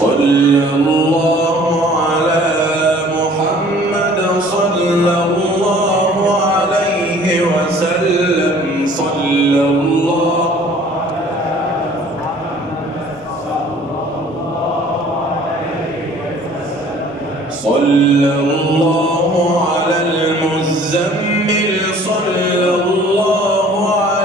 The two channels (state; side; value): normal; both; correlation 0.52